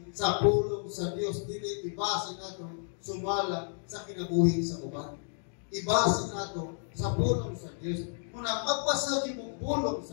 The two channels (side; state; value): right; silent; 57 dB below the other